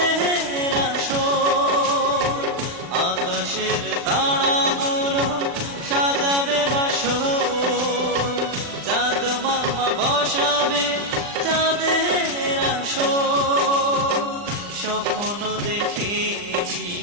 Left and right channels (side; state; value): left; late; 39 ms